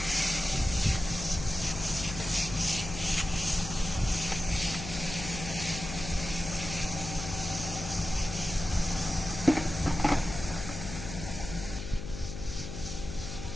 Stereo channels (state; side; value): noise; left; hum, 8 dB below the sound